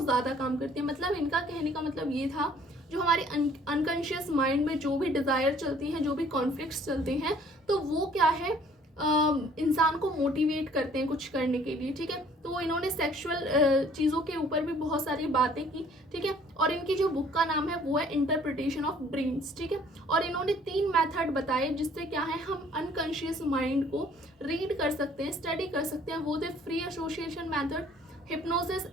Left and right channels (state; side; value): normal; both; correlation 0.57